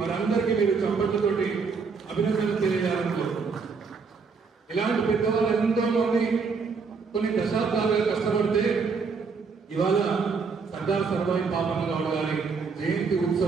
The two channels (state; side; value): quieter; left; 5.1 dB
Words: వారందరికీ మీరు చప్పట్లతోటి అభినందనలు తెలియజేయాలని కోరుకుంటున్నాను. ఇలాంటి పెద్దవాళ్ళు ఎంతో మంది కొన్ని దశాబ్దాలుగా కష్టపడితే ఇవాళ సర్దార్ సర్వాయి పాపన్న గౌడ్ గారి జయంతి